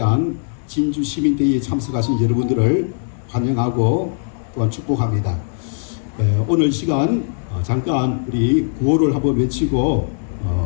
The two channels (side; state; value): right; silent; digital silence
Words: 진주 시민대회에 참석하신 여러분들을 환영하고 또한 축복합니다. 오늘 시간 잠깐 우리 구호를 한번 외치고